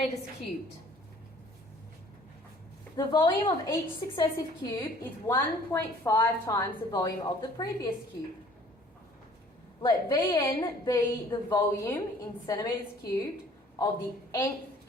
cubed. The volume of each successive cube is 1.5 times the volume of the previous cube. Let Vn be the volume in centimetres cubed of the nth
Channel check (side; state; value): both; normal; correlation 0.54